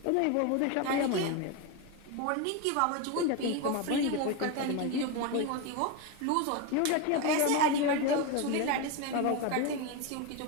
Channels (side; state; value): both; different; correlation 0.03